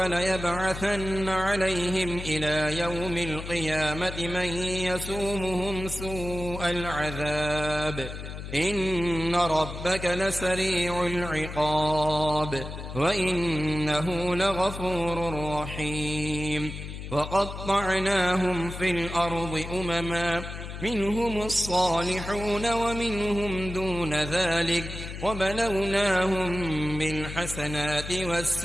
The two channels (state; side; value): noise; left; hum, 9 dB below the sound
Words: عليهم إلى يوم القيامة من يسومهم سوء العذاب إن ربك لسريع العقاب وإنه لغفور رحيم وقطعناهم في الأرض أمما منهم الصالحون ومنهم دون ذلك وبلوناهم بالحسنات